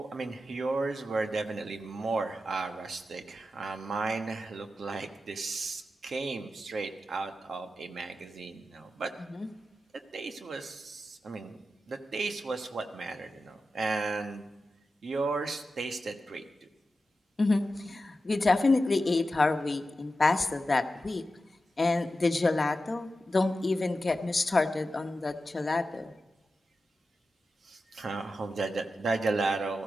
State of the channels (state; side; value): normal; both; correlation 0.91